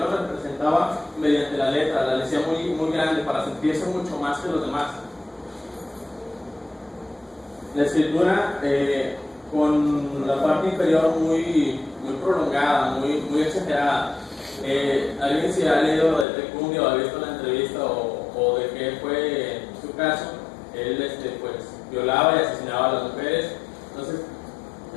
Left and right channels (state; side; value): drops out; right; at 16.2 s